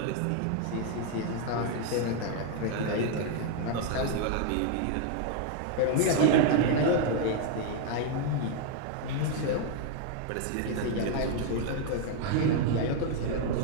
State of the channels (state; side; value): different; both; correlation 0.00